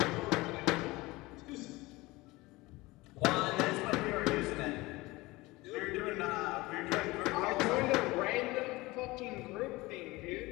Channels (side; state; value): right; quieter; 21.2 dB